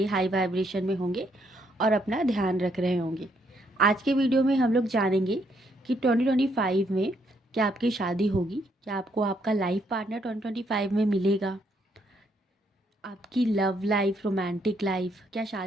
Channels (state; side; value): normal; both; correlation 0.72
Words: हाई वाइब्रेशन में होंगे और अपना ध्यान रख रहे होंगे। आज के वीडियो में हम लोग जानेंगे कि 2025 में क्या आपकी शादी होगी, क्या आपको आपका लाइफ पार्टनर 2025 में मिलेगा, आपकी लव लाइफ, रोमांटिक लाइफ क्या